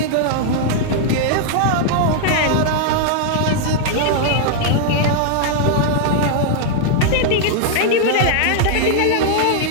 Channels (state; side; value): different; both; correlation -0.01